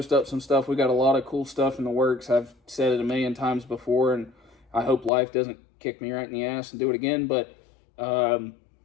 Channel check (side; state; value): right; drops out; at 5.1 s